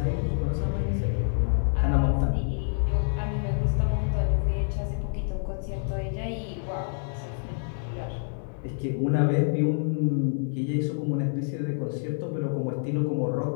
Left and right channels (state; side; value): silent; right; digital silence